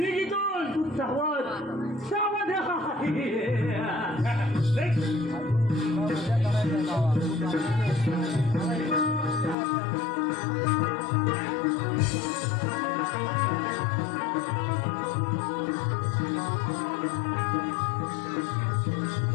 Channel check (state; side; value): drops out; right; at 9.6 s